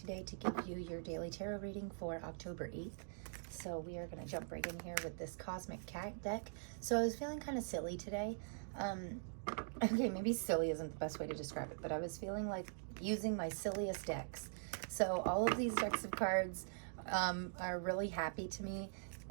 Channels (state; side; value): silent; left; digital silence